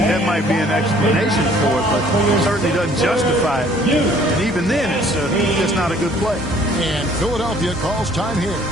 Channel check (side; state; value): both; normal; correlation 0.57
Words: might be an explanation for it, but it certainly doesn't justify it. And even then, it's just not a good play. And Philadelphia calls time here.